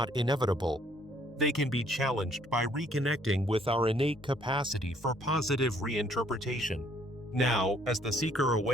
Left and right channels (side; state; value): both; normal; correlation 0.64